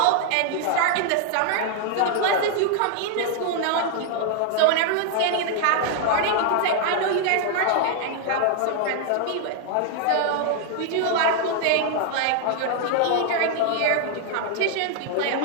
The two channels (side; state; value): both; different; correlation 0.00